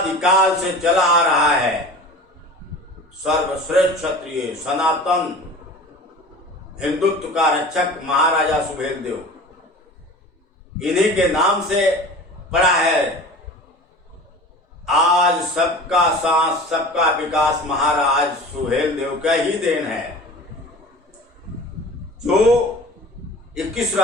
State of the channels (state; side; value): normal; both; correlation 0.39